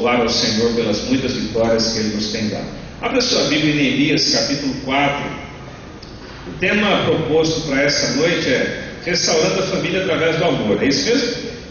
ao Senhor pelas muitas vitórias que Ele nos tem dado. Abra sua Bíblia em Neemias capítulo 4. O tema proposto para essa noite é restaurando a família através do amor. É isso mesmo?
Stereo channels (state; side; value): identical; both; correlation 1.00